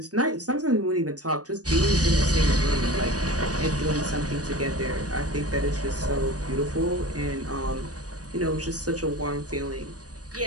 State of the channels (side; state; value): left; late; 0.67 ms